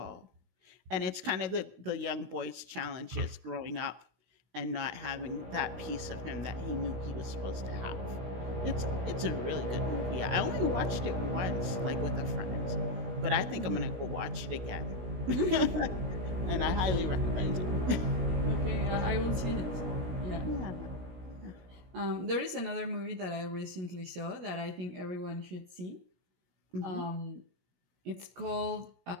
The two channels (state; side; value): late; left; 17 ms